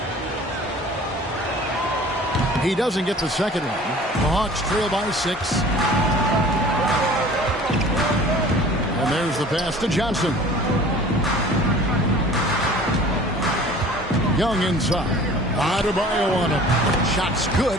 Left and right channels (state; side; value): normal; both; correlation 0.46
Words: He doesn't get the second one. The Hawks trail by 6. And there's the pass to Johnson. Young inside. Adebayo on him. Shot's